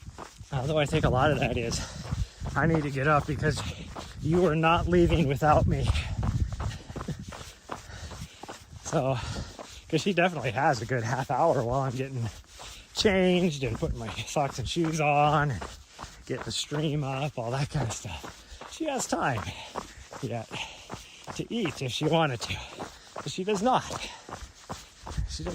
Although I think a lot of that is, I need to get up because you are not leaving without me. So, because she definitely has a good half hour while I'm getting changed and putting my socks and shoes on and get the stream up, all that kind of stuff. She has time yet to eat if she wanted to, but she does not. She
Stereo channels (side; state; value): both; identical; correlation 1.00